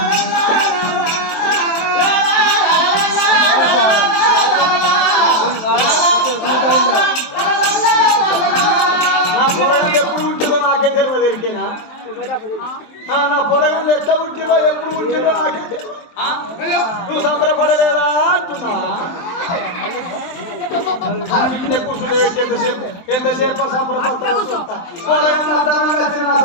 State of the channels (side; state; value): right; late; 23 ms